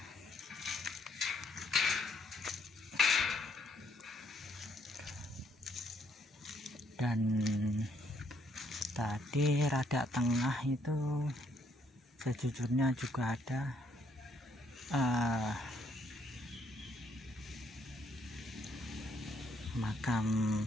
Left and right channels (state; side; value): normal; both; correlation 0.69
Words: Dan tadi rada tengah itu sejujurnya juga ada makam